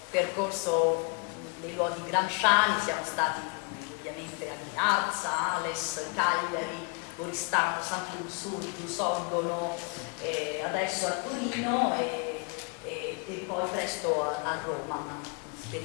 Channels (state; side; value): quieter; right; 34.0 dB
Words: percorso dei luoghi gramsciani. Siamo stati ovviamente a Ghinarza, Ales, Cagliari, Oristano, Sant'Ursulto, Sorgono, adesso a Torino e poi presto a Roma.